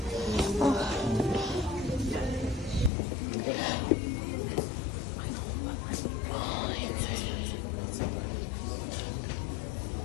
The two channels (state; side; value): drops out; right; at 2.9 s